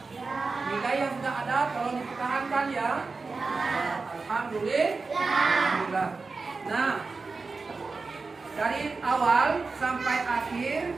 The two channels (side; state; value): left; quieter; 4.2 dB